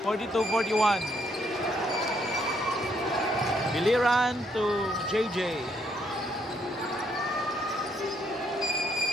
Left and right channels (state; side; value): normal; both; correlation 0.72